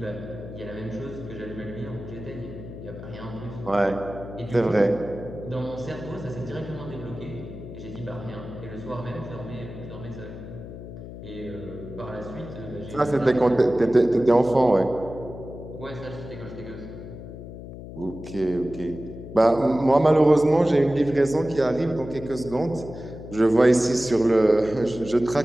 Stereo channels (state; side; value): noise; left; hum, 12 dB below the sound